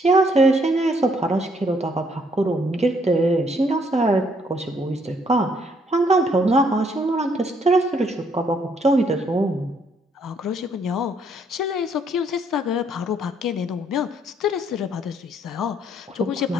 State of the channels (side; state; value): both; normal; correlation 0.68